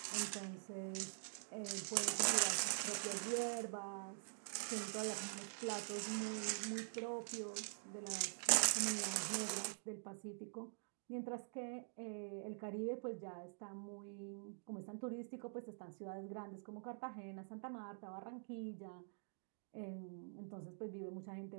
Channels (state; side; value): silent; left; digital silence